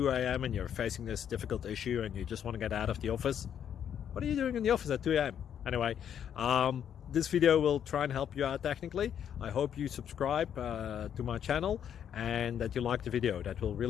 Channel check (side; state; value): right; quieter; 9.0 dB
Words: a.m. and you're facing this difficult issue and you just want to get out of the office. What are you doing in the office at 2 a.m.? Anyway, this video will try and help you out technically. I hope you subscribe to my channel and that you like the video. That will